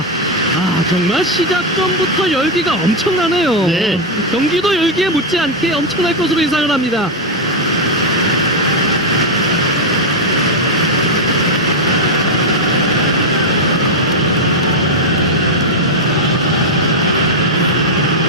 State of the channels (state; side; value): normal; both; correlation 0.02